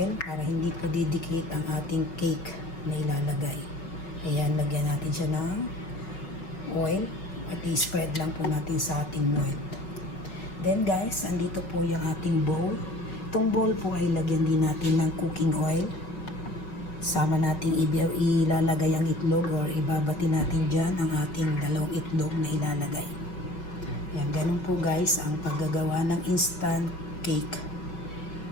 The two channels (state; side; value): late; right; 5.2 ms